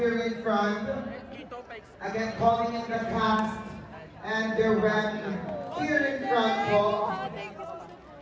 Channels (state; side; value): identical; both; correlation 1.00